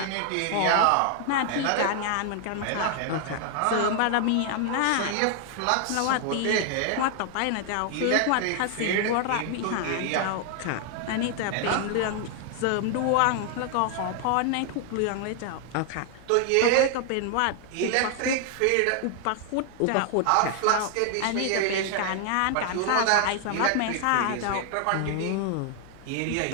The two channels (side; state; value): both; different; correlation 0.00